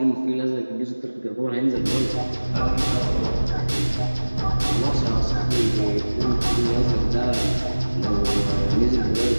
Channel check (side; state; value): both; inverted; correlation -1.00